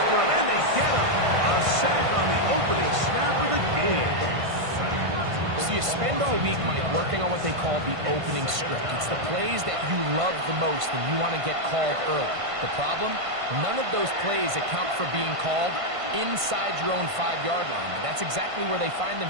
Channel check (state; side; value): late; left; 1.5 ms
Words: him, and they get him. A sack on the opening snap of the game. So you spend all week, Mike, working on what they call the opening script. It's the plays that you love the most and you want to get called early. The problem? None of those plays account for being called inside your own 5-yard line. But that's exactly where they find